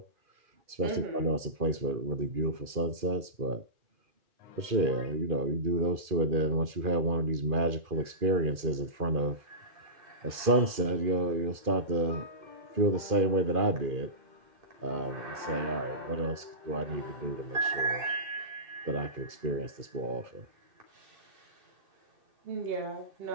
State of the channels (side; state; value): left; late; 2.4 ms